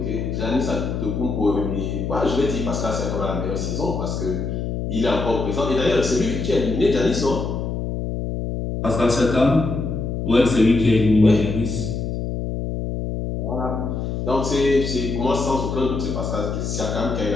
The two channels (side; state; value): left; noise; hum, 3 dB below the sound